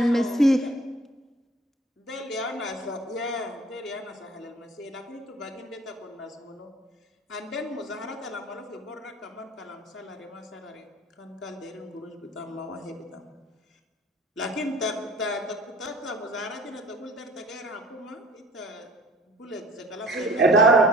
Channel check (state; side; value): normal; both; correlation 0.49